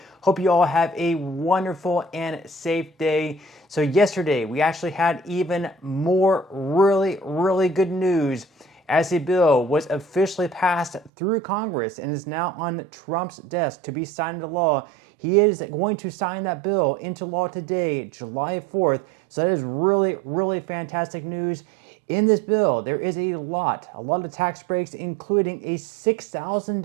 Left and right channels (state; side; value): drops out; left; at 11.1 s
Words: Hope you all have a wonderful and safe day. So yesterday we actually had even more really good news as a bill was officially passed through Congress and is now on Trump's desk to be signed into law. He is going to sign that bill into law today, July 4th. So that is really fantastic news. In this bill, there is a lot of tax breaks, including a